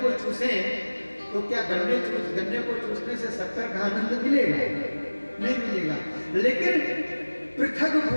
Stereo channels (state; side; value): inverted; both; correlation -1.00